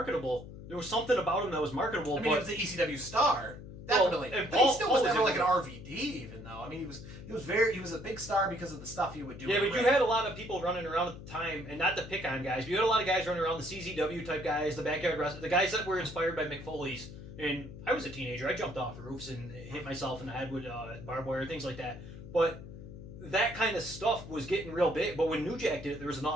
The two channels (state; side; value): noise; left; hum, 13 dB below the sound